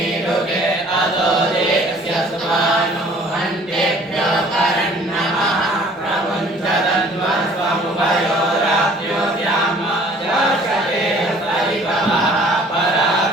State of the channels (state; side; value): normal; both; correlation 0.53